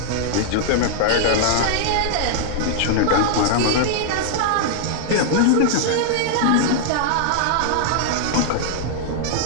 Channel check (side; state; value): both; different; correlation -0.01